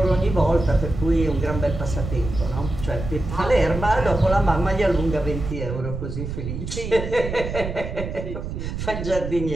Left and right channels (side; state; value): right; noise; rumble, 6 dB below the sound